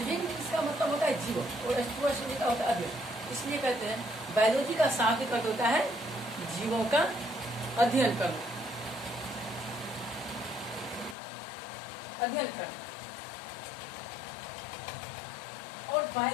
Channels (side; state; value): right; drops out; at 11.2 s